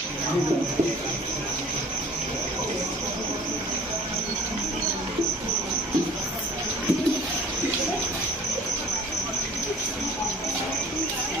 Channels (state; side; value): normal; both; correlation 0.48